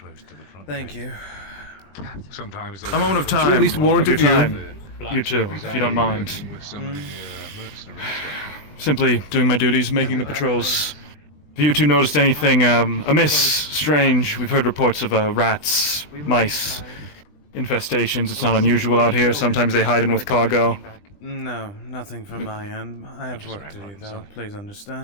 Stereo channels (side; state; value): right; late; 20 ms